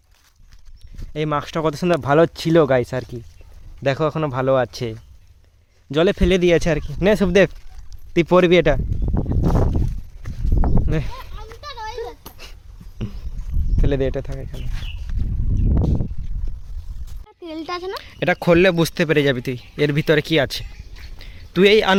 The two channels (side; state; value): both; identical; correlation 1.00